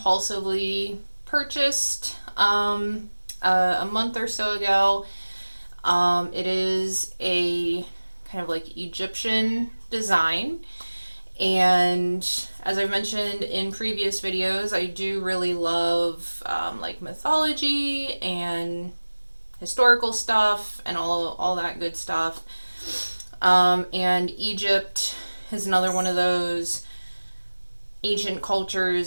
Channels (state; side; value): inverted; both; correlation -1.00